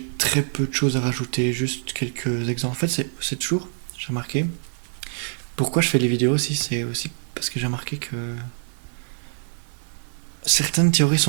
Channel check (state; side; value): silent; left; 62 dB below the other